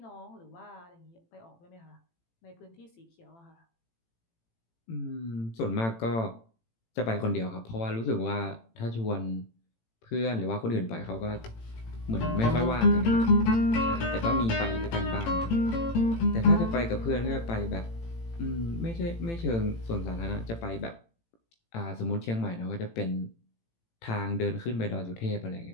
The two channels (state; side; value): late; right; 18 ms